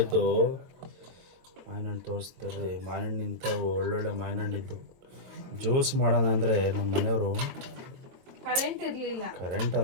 ಇದ್ದು. ಮಾವಿನ ಹಣ್ಣು ತೋರಿಸ್ತಾರೆ. ಮಾವಿನ ಹಣ್ಣು ನಿಂತವು, ಒಳ್ಳೊಳ್ಳೆ ಮಾವಿನ ಹಣ್ಣಿದ್ದು. ಜ್ಯೂಸ್ ಮಾಡೋಣ ಅಂದರೆ ನಮ್ಮ ಮನೆಯವರು ಕರೆಂಟ್ ಇರಲಿಲ್ಲ. ಕರೆಂಟ್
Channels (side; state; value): left; late; 22 ms